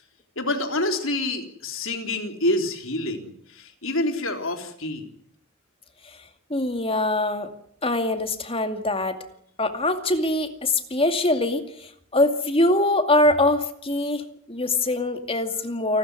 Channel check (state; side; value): normal; both; correlation 0.22